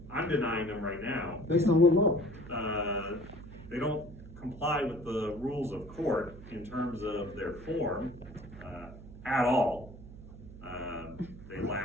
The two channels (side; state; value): right; noise; hum, 15 dB below the sound